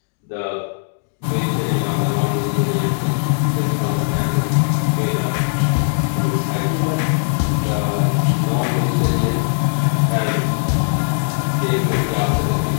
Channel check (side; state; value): right; silent; digital silence